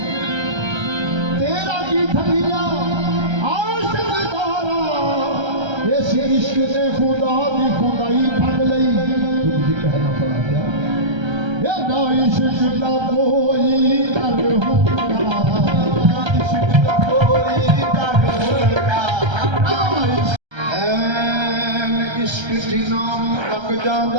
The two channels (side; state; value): left; late; 1.3 ms